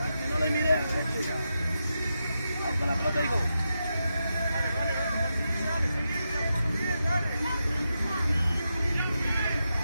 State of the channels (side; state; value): both; inverted; correlation -0.87